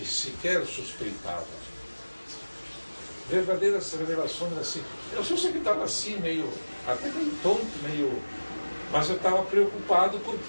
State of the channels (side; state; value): both; inverted; correlation -1.00